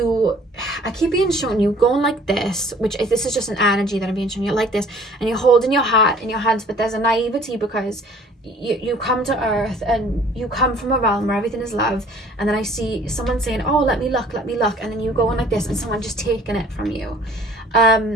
keep being shown you going like this, which if this is just an energy that I'm being shown, you're like this, and you're holding your heart in your hands, but there's a naivety because you come to earth and you come from a realm where everything is love, and then I see someone saying, oh, let me look, and then you go on like this, and someone just taking it from you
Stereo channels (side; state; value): both; normal; correlation 0.53